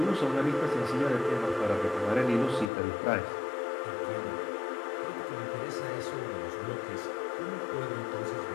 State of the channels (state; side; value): drops out; right; at 2.7 s